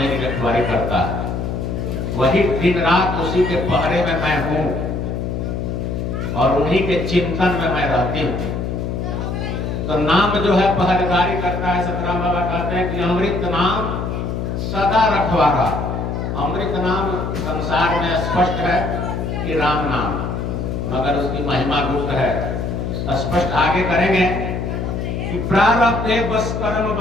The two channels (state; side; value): noise; left; hum, 3 dB below the sound